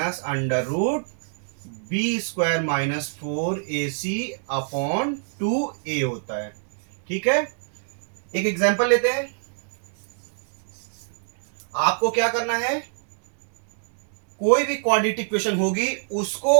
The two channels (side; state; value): left; silent; digital silence